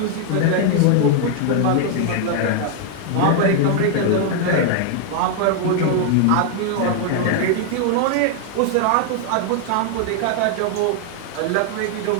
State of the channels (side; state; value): both; different; correlation 0.00